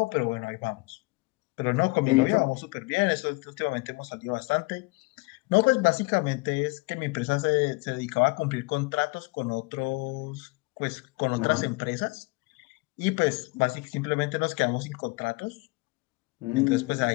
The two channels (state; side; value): quieter; right; 25.5 dB